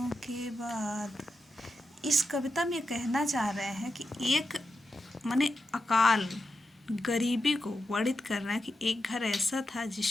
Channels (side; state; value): both; normal; correlation 0.87